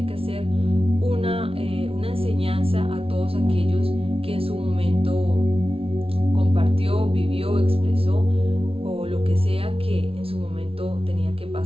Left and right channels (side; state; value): left; late; 0.27 ms